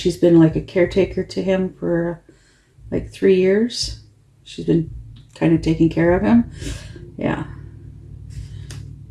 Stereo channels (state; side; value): identical; both; correlation 1.00